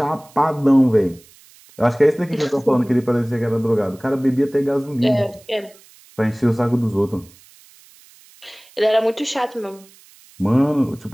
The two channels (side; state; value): right; noise; hiss, 26 dB below the sound